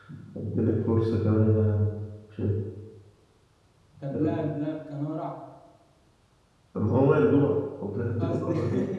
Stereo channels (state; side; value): identical; both; correlation 1.00